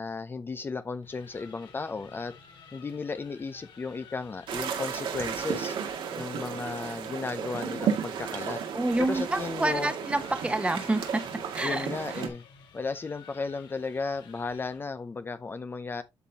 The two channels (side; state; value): both; normal; correlation 0.72